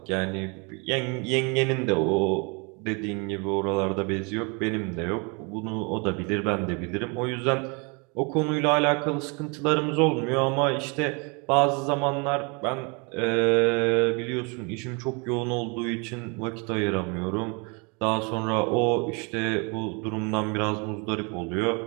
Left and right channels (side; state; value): left; quieter; 31.8 dB